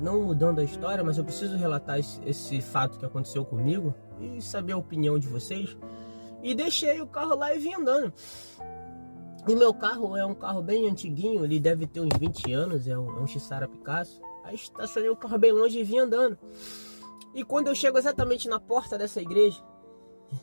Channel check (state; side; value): inverted; both; correlation -1.00